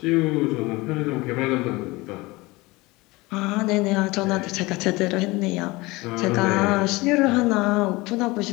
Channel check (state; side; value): quieter; right; 22.3 dB